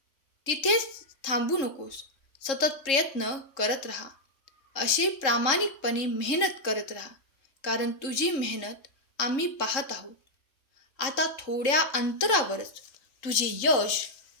तिथेच थांबू नकोस. सतत प्रयत्न करत राहा. असे प्रामाणिकपणे मेहनत करत राहा, कारण तुझी मेहनत आम्ही पाहत आहोत. आता थोड्या अंतरावरच तुझे यश,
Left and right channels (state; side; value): late; right; 3.7 ms